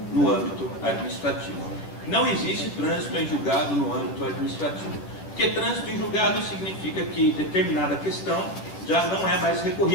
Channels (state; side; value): late; right; 11 ms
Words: no âmbito administrativo. Não existe trânsito em julgado no âmbito administrativo, porque trânsito em julgado significa que determinada questão já não é mais